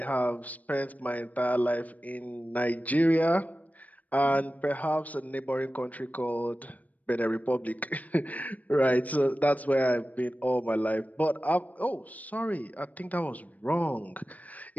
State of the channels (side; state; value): right; late; 0.075 ms